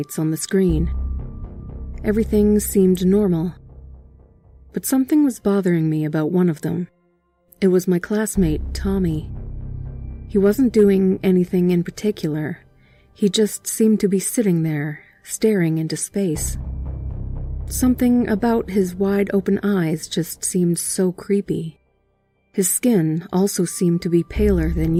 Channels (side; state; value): both; identical; correlation 1.00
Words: on the screen. Everything seemed normal, but something was bothering me about one of them. It was my classmate, Tommy. He wasn't doing anything in particular. He just seemed to be sitting there, staring into space. Something about his wide-open eyes just seemed so creepy. His skin also seemed to be paler than